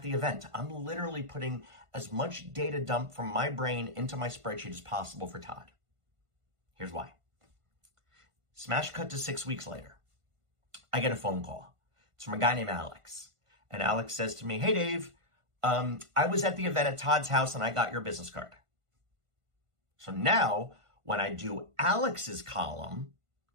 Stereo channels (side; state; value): left; late; 1.5 ms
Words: the event. I'm literally putting as much data dump from my brain into my spreadsheet as possible for Todd. Here's why. Smash cut to 6 weeks later. I get a phone call. It's from a guy named Alex. And Alex says to me, "Hey, Dave, I was at the event at Todd's house and I got your business card." So now when I do Alex's column